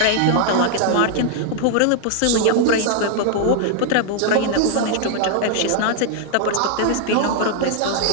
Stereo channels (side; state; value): both; different; correlation 0.00